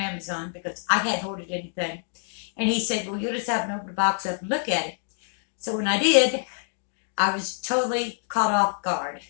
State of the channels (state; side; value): silent; right; 61 dB below the other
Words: Because I hadn't ordered anything, and he said, "Well, you'll just have to open the box up and look at it." So when I did, I was totally caught off guard.